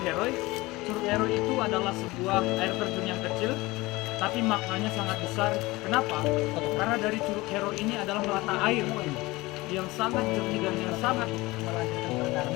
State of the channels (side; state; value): right; quieter; 21.1 dB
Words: Heroi. Curug Heroi itu adalah sebuah air terjun yang kecil, tapi maknanya sangat besar. Kenapa? Karena dari Curug Heroi ini adalah mata air yang sangat jernih dan yang sangat